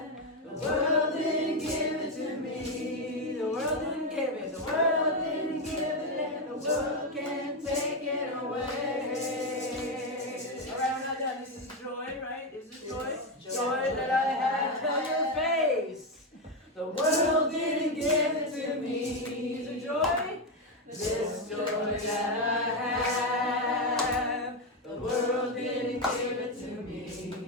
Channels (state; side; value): normal; both; correlation 0.08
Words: the world didn't give it to me. The world didn't give it, the world didn't give it, and the world can't take it away. All right, we're not done. This is joy, right? Is it joy? Joy that I have, tell your face. The world didn't give it to me. Is it joy? This joy that I have, the world didn't give it to